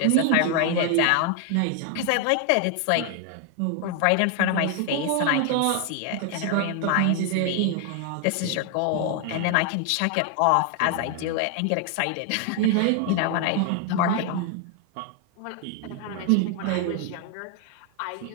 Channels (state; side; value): different; both; correlation 0.00